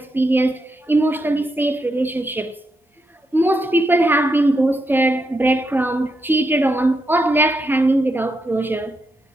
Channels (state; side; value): normal; both; correlation 0.83